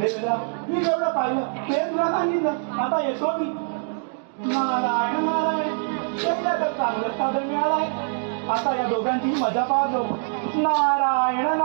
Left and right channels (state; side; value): silent; left; digital silence